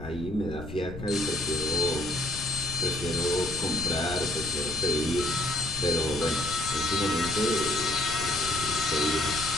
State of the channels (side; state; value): left; noise; rumble, 11 dB below the sound